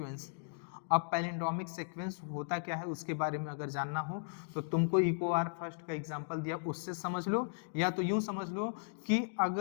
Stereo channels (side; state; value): right; silent; digital silence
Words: अब पैलिंड्रोमिक सीक्वेंस होता क्या है उसके बारे में अगर जानना हो तो तुमको इको आर फर्स्ट का एग्जांपल दिया उससे समझ लो, या तो यूं समझ लो कि